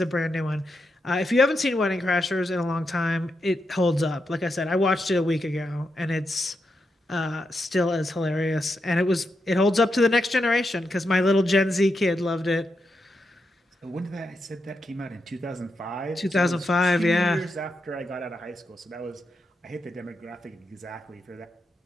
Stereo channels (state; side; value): normal; both; correlation 0.85